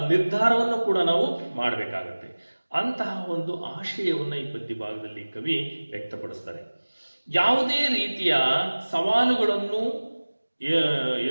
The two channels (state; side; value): inverted; both; correlation -1.00